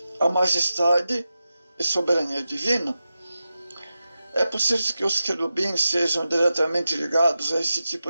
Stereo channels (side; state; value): both; inverted; correlation -0.92